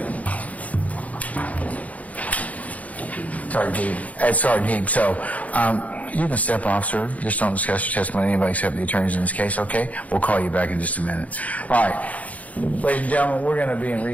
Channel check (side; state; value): right; late; 0.070 ms